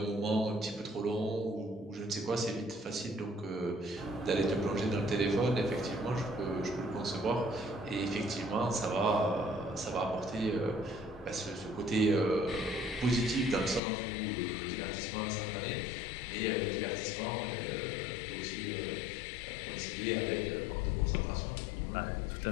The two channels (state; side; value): drops out; right; at 13.8 s